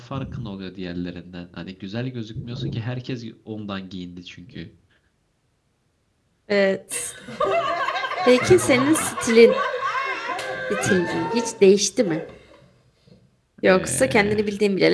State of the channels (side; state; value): both; identical; correlation 1.00